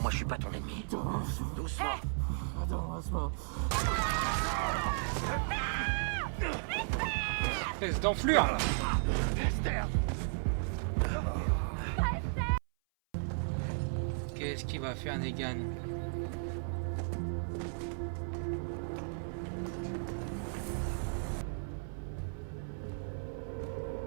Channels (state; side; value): silent; left; 54 dB below the other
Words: Moi je suis pas ton ennemi. Doucement. Espèce d'enflure là. Esther! Qu'est-ce qu'il va faire Negan?